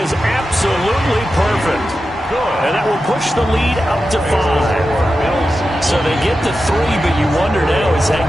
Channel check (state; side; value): normal; both; correlation 0.91